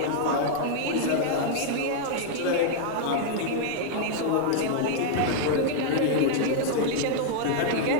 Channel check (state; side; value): different; both; correlation -0.01